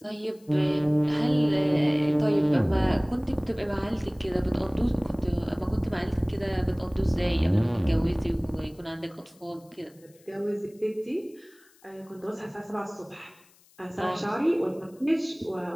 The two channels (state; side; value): noise; left; hiss, 29 dB below the sound